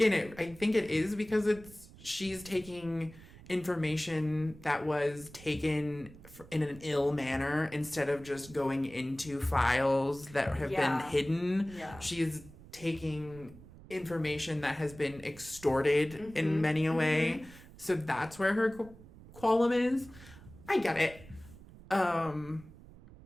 I think it is because she's taking information that was taken in an ill manner instead of just going into files that have been hidden. She's taking information that has been extorted in many a way. So that's where her qualm is. I get it.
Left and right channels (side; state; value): right; noise; rumble, 19 dB below the sound